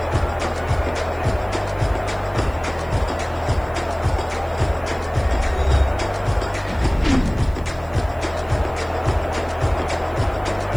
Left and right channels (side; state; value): right; noise; hiss, 28 dB below the sound